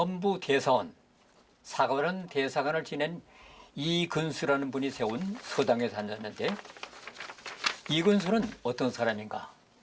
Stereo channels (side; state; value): both; identical; correlation 1.00